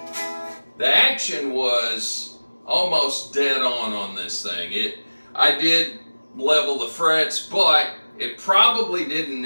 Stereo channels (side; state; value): both; inverted; correlation -1.00